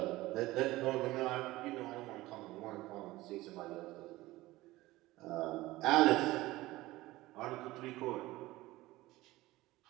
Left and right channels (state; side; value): quieter; left; 18.3 dB